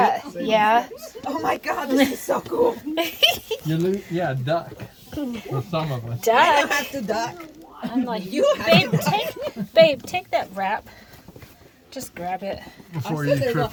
it? Yeah. Oh my God, this is so cool. Yeah, duck. For some of us. I don't Duck. have to duck. I'm like, You have babe, to duck. babe, take that wrap. Just grab it. Before you trip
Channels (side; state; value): both; identical; correlation 1.00